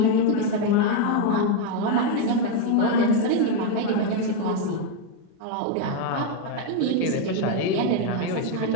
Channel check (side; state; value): both; different; correlation 0.02